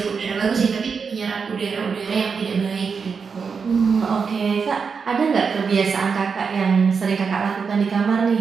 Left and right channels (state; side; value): quieter; left; 5.6 dB